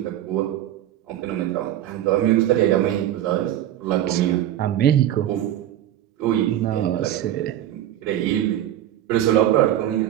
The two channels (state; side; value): quieter; left; 12.2 dB